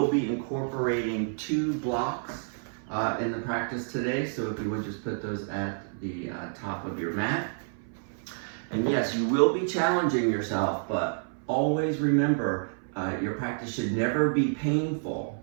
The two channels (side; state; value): left; silent; 57 dB below the other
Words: be incorporating 2 blocks in the practice today, so if you would just put those at the top of your mat. And yes, you will be challenging yourself, but always remember, your practice should never be painful.